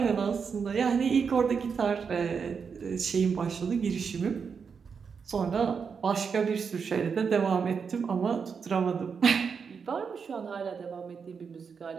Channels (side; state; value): left; quieter; 6.0 dB